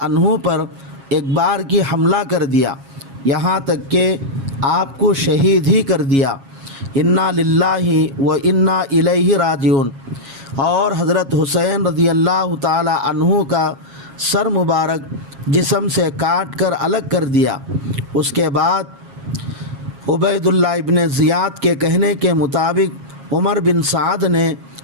عنہ پر ایک بار کی حملہ کر دیا، یہاں تک کہ آپ کو شہید ہی کر دیا۔ انا للہ و انا الیہ راجعون۔ اور حضرت حسین رضی اللہ تعالی عنہ کا سر مبارک جسم سے کاٹ کر الگ کر دیا۔ اس کے بعد عبید اللہ ابن زیاد کے کہنے کے مطابق عمر بن سعد نے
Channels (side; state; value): left; late; 7.3 ms